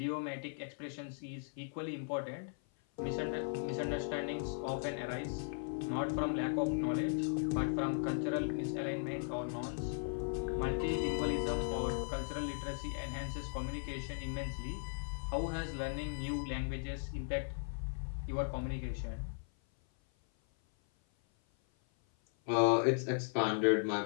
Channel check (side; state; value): right; silent; 53 dB below the other